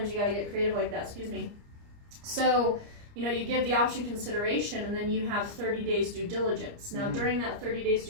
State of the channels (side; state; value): left; late; 29 ms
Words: you got to get creative like that. Excuse me. So, you give the option consideration, and then you have 30 days due diligence. Now, during that 30 days